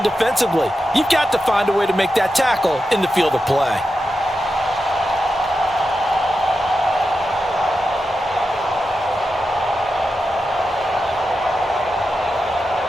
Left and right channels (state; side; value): normal; both; correlation 0.90